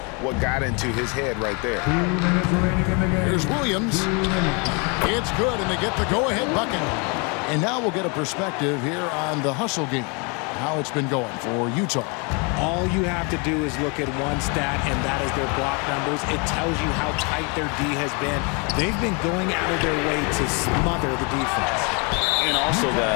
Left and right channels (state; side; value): quieter; right; 32.9 dB